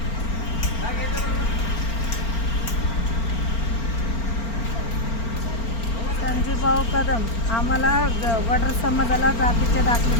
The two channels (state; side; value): late; right; 4.4 ms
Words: कदम आम्हाला वडर समाजाला जातीचे दाखले